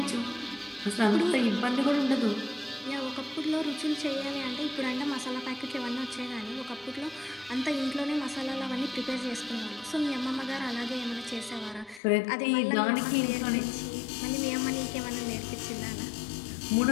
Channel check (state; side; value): drops out; right; at 12.0 s